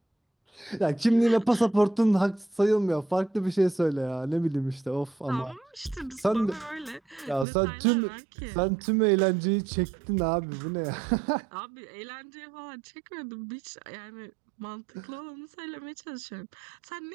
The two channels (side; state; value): left; drops out; at 7.5 s